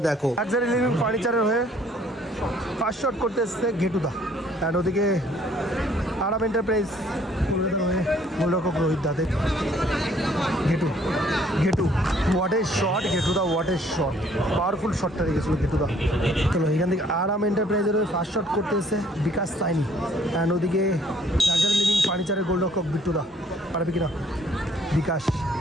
দেখো। লাক্সারি লিভিং ফার্নিচারের হয়ে ফার্স্ট শট করতে এসছে গেটু দা, অ্যান্ড ওদিকে আরাম এন্টারপ্রাইজ গোলরক্ষক রোহিত দা। গেটু গেটু হোয়াট এ শট, গেটু দা হোয়াট এ শট, পাওয়ারফুল শটটা রেখেছিল গেটু দা। চলো এখান থেকে আরাম এন্টারপ্রাইজের ফার্স্ট শট করতে এসে বিকাশ সাইনি, অ্যান্ড ওদিকে লাক্সারি লিভিং ফার্নিচারের গোলরক্ষক বিট্টু দা। পারবে কিনা বিকাশ,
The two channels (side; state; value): both; normal; correlation 0.61